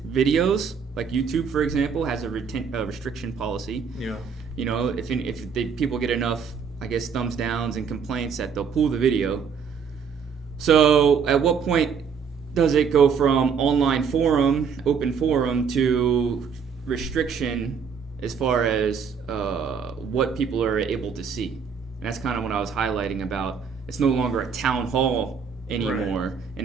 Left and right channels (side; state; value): left; quieter; 6.3 dB